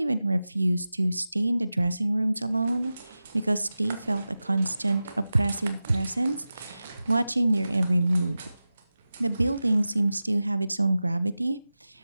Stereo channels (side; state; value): both; inverted; correlation -0.95